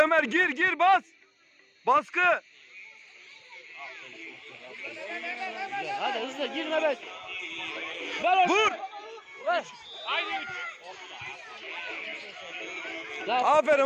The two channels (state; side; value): identical; both; correlation 1.00